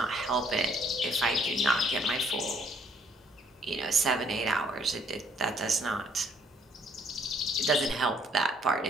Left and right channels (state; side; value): normal; both; correlation 0.64